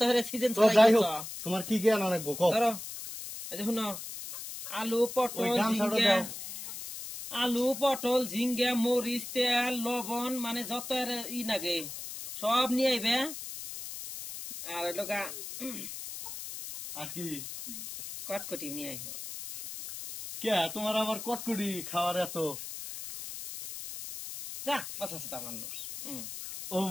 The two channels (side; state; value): left; noise; hiss, 9 dB below the sound